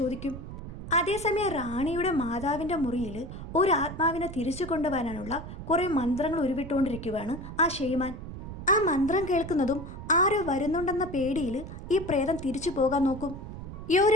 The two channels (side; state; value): right; noise; rumble, 10 dB below the sound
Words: അതേസമയം റാണിയുടെ മാതാവിൻ്റെ മുറിയിൽ ഒരു ആത്മാവിനെ തിരിച്ചു കൊണ്ടുവരാനുള്ള കുറേ മന്ത്രങ്ങൾ ഉരുവിട്ടുകൊണ്ടിരിക്കുകയാണ് ആ ഷെയ്മാൻ. ആ മന്ത്രം കേൾക്കുന്നതും ആരോ വരുന്നുണ്ടെന്ന പേടിയിൽ ഈ പ്രേതം തിരിച്ചു പോകാൻ നോക്കും. യോരി